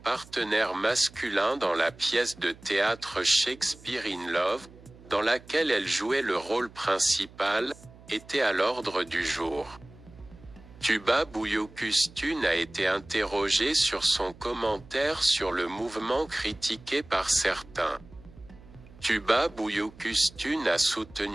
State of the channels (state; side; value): noise; right; hum, 21 dB below the sound